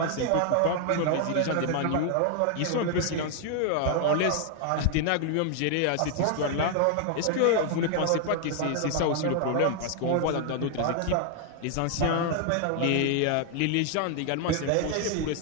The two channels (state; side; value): different; both; correlation 0.00